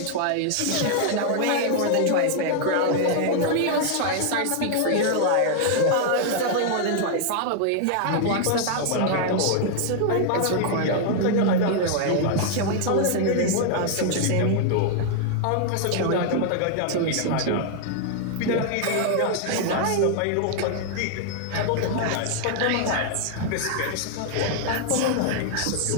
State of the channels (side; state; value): both; different; correlation 0.00